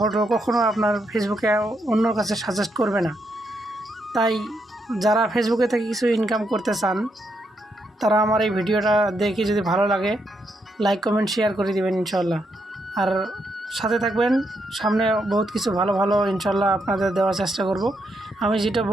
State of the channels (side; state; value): both; normal; correlation 0.79